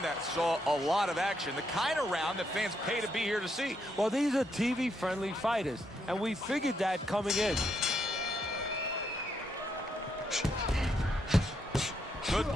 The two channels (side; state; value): both; normal; correlation 0.78